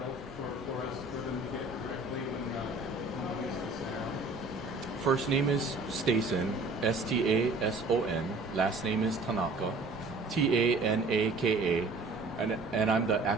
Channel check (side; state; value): left; quieter; 3.2 dB